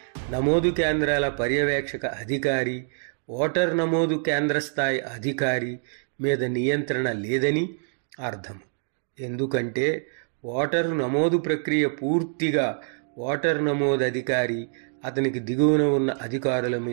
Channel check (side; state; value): left; silent; digital silence